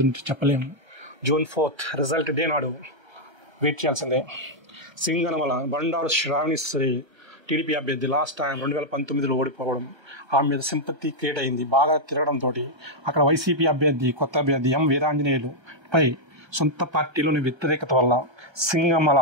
చెప్పలేము. June 4th రిజల్ట్ డే నాడు వెయిట్ చేయాల్సిందే. సింగనమల బండారు శ్రావణిశ్రీ టీడీపీ అభ్యర్థి లాస్ట్ టైం 2019లో ఓడిపోవడం ఆమె మీద సింపతి క్రియేట్ అయింది. బాగా తిరగడంతో అక్కడ వైసీపీ అభ్యర్థి కొత్త అభ్యర్థి ఎం వీరాంజనేయులు పై సొంత పార్టీలోని వ్యతిరేకత వల్ల సింగమల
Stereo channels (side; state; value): left; late; 1.3 ms